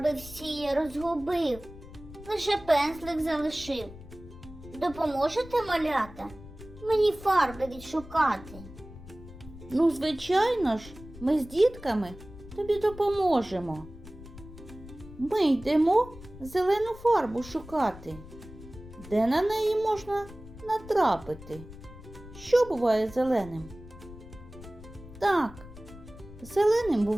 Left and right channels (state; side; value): noise; left; rumble, 16 dB below the sound